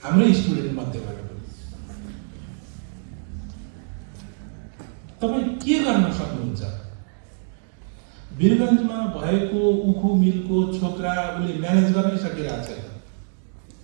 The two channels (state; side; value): silent; left; digital silence